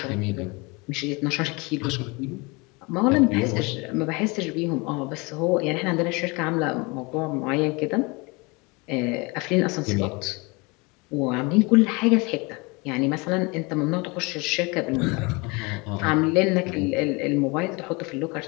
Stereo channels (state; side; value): quieter; right; 27.1 dB